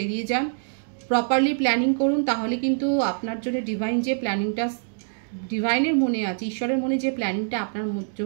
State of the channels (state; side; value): silent; left; digital silence